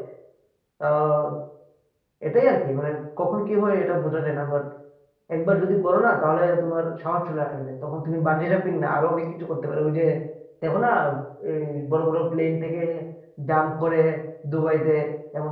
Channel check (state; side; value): identical; both; correlation 1.00